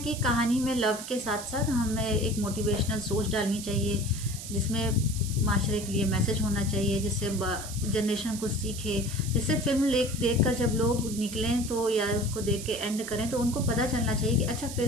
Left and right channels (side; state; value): right; noise; hiss, 10 dB below the sound